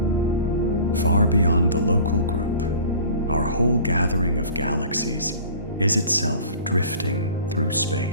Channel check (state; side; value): inverted; both; correlation -0.45